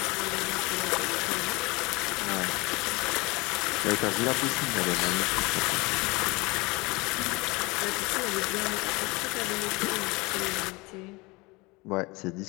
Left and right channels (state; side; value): quieter; right; 24.5 dB